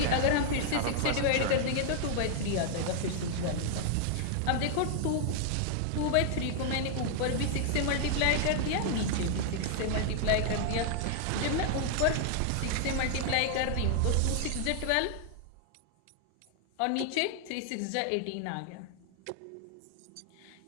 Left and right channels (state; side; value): different; both; correlation 0.00